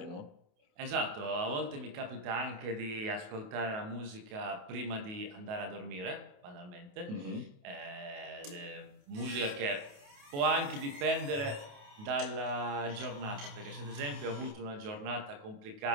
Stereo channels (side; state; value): left; late; 28 ms